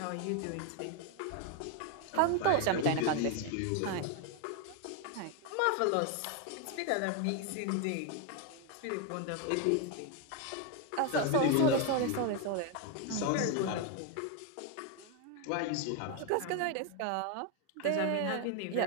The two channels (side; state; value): both; different; correlation 0.01